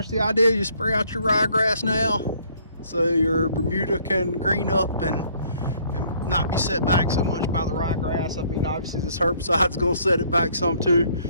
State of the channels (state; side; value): inverted; both; correlation -0.62